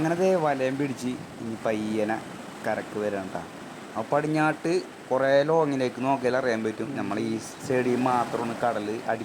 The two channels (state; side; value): identical; both; correlation 1.00